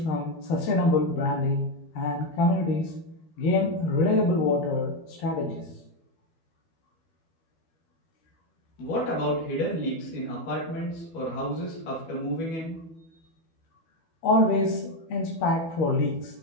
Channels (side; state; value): right; late; 12 ms